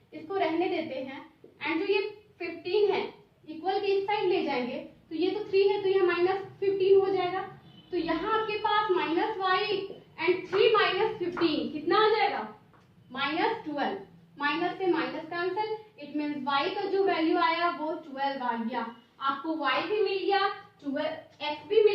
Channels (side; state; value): both; identical; correlation 1.00